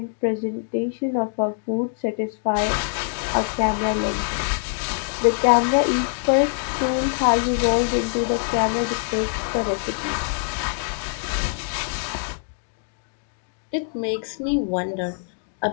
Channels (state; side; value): silent; right; digital silence